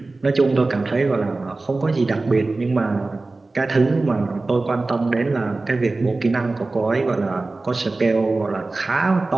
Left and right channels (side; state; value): left; quieter; 3.3 dB